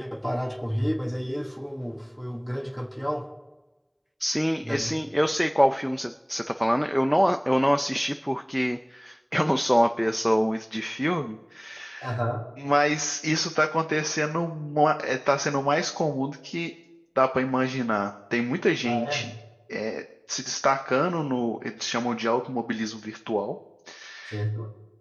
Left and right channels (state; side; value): identical; both; correlation 1.00